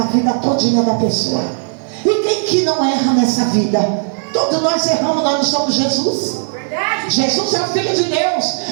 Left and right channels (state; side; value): silent; left; digital silence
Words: vida todinha da pessoa. E quem que não erra nessa vida? Todos nós erramos, nós não somos Jesus. Jesus é o Filho de